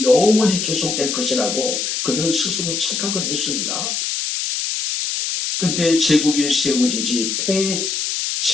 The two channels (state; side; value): noise; left; hiss, 2 dB below the sound